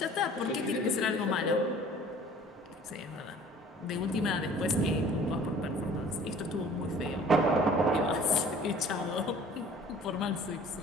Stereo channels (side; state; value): both; normal; correlation 0.49